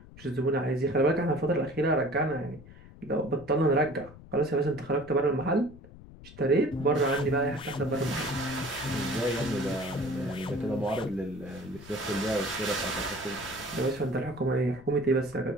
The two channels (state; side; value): noise; left; rumble, 18 dB below the sound